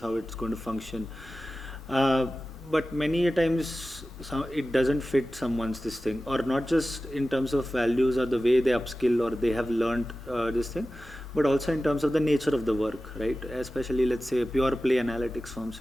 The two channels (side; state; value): both; normal; correlation 0.95